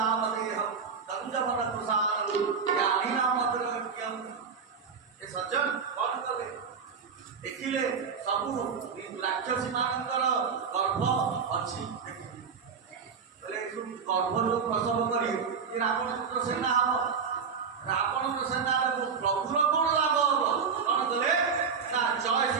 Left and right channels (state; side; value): quieter; left; 5.9 dB